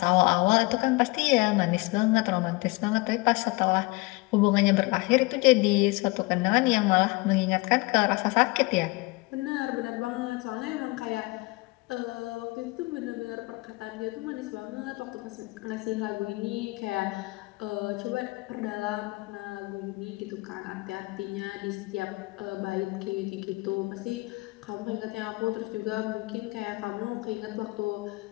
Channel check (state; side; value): quieter; right; 24.5 dB